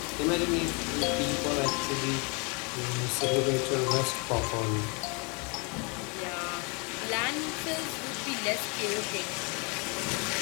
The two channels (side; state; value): right; quieter; 32.3 dB